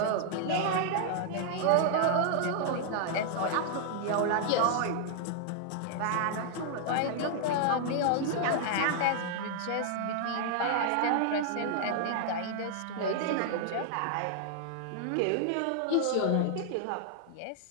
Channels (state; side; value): different; both; correlation 0.00